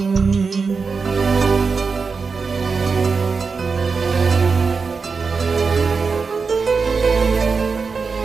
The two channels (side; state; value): left; quieter; 4.9 dB